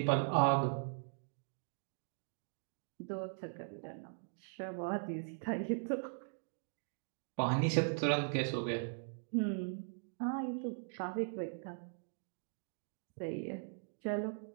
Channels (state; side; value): silent; left; digital silence